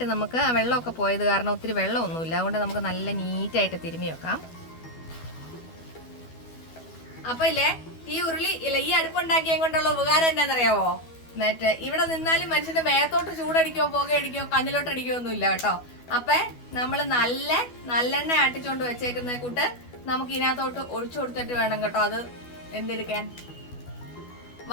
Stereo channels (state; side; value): late; right; 12 ms